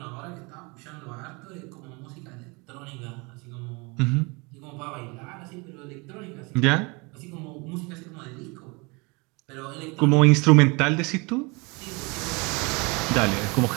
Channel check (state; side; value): quieter; left; 28.2 dB